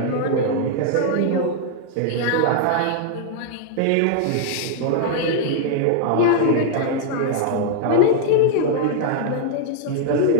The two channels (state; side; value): different; both; correlation -0.01